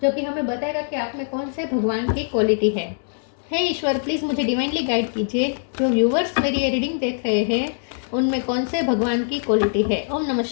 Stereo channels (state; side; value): silent; right; 64 dB below the other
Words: जो कि हमें बताएगा कि आप में कौन से भगवान की क्वालिटी है। हे ईश्वर, प्लीज़ मुझे डिवाइनली गाइड कीजिए। जो व्यूवर्स मेरी ये रीडिंग देख रहे हैं उनमें कौन से भगवान की क्वालिटी है। ओम नमः